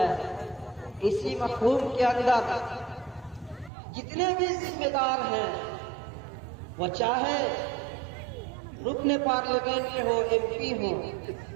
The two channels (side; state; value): left; drops out; at 3.7 s